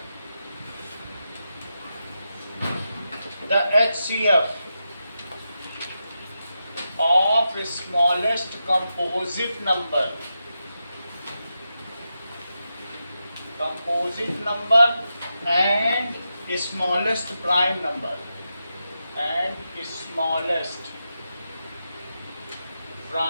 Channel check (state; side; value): inverted; both; correlation -0.88